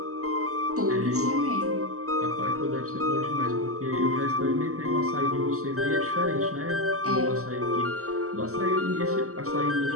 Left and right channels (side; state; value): left; late; 0.64 ms